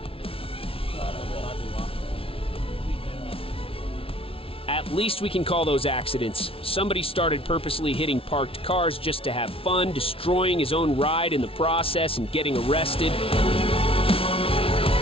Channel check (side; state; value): right; late; 0.26 ms